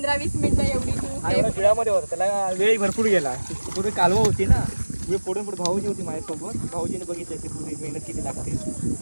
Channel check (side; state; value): both; inverted; correlation -1.00